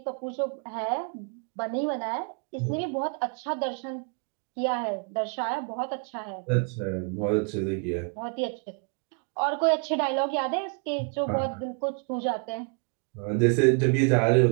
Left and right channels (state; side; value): quieter; left; 39.9 dB